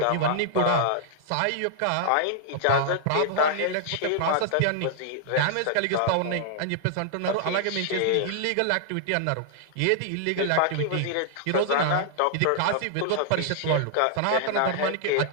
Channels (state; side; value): different; both; correlation -0.01